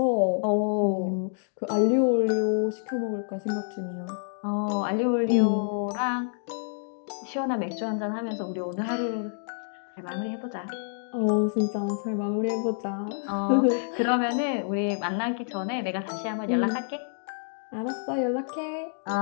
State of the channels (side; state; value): right; silent; digital silence